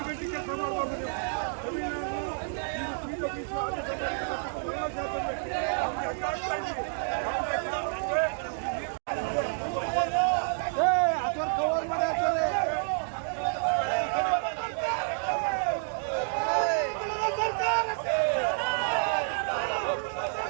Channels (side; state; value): left; silent; digital silence